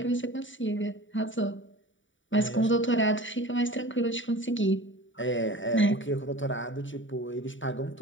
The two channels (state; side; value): late; right; 0.56 ms